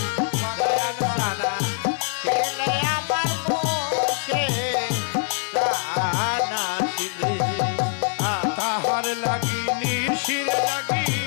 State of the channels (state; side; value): silent; right; digital silence